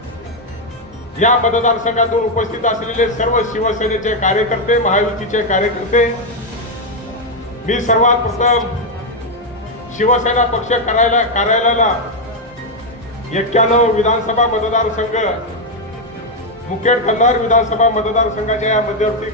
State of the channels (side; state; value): both; normal; correlation 0.03